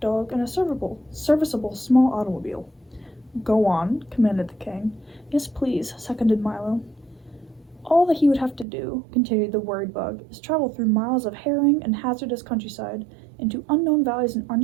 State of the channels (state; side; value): drops out; left; at 8.7 s